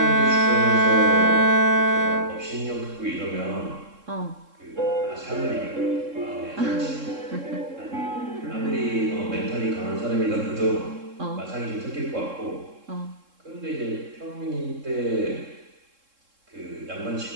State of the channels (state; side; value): late; left; 3.7 ms